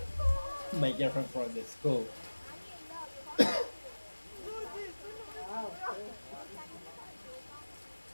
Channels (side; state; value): both; inverted; correlation -1.00